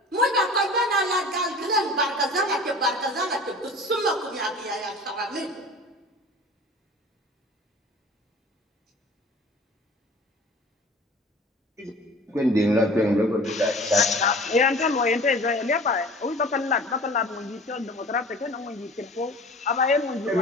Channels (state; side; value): normal; both; correlation 0.42